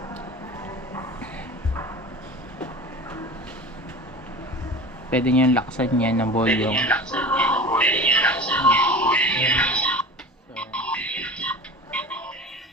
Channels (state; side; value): normal; both; correlation 0.36